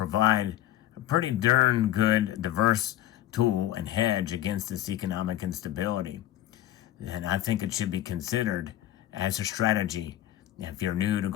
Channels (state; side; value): quieter; right; 13.4 dB